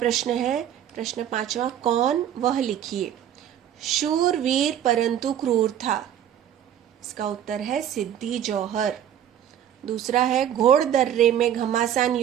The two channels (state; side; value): quieter; left; 10.2 dB